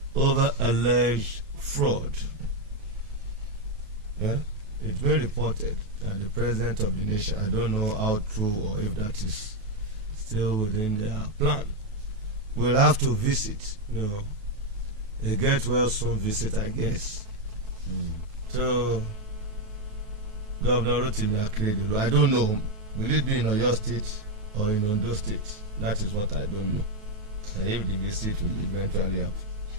over alleged fraud. Yeah? It's been reported that the president of the nation, I don't know how true or if that is still within their plan, will have to visit, a get well soon visit, I guess. So, Governor Rotimi Akeredolu, I don't know, will it be in Oyo State or in Ondo State? That is what I don't know. And if the visit will eventually happen.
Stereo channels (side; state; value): left; late; 9.3 ms